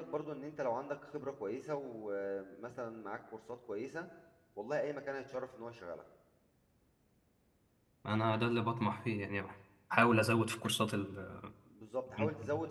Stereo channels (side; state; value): both; identical; correlation 1.00